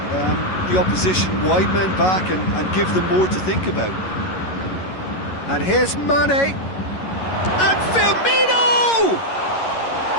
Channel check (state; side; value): late; right; 11 ms